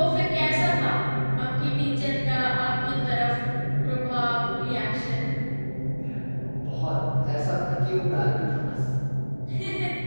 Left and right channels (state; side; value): inverted; both; correlation -1.00